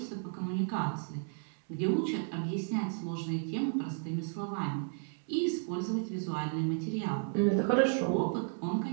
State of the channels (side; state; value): left; silent; 56 dB below the other